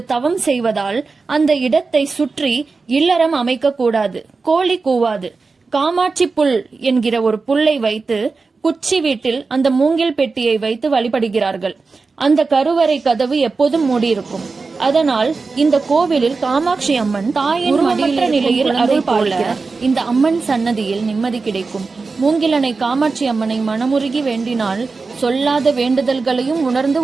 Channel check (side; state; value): left; quieter; 4.2 dB